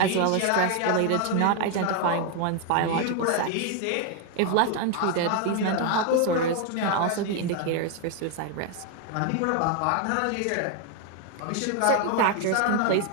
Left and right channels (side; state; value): both; different; correlation 0.01